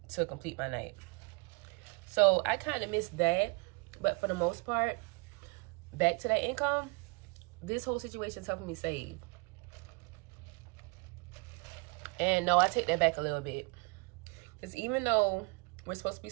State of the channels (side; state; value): left; quieter; 28.1 dB